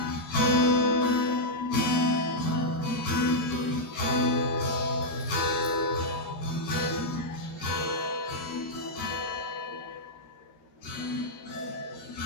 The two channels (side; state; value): right; late; 13 ms